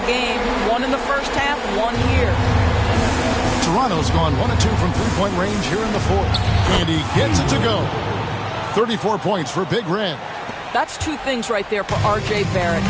game. 1 in the first half, 1 here. Toronto's gone 1 of 2 from 3-point range here in the 4th. And he gets it to go. 34 points for Big Red. That's 2 things right there for R.J. Barrett.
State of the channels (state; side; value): identical; both; correlation 1.00